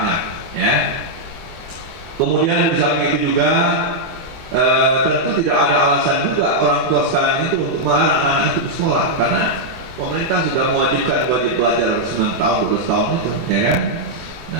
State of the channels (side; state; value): left; late; 24 ms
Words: ya. Kemudian di samping itu juga tentu tidak ada alasan juga orang tua sekarang itu untuk melarang anak-anak itu bersekolah, karena pemerintah sudah mewajibkan wajib belajar 9 tahun, 12 tahun itu, ya kan?